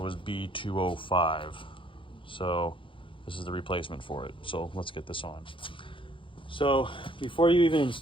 was B205. So this is the replacement for it. So let's get this on. So before you even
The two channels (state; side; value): late; right; 0.25 ms